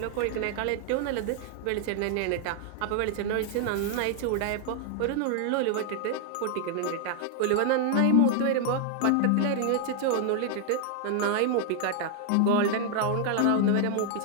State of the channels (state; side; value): different; both; correlation 0.00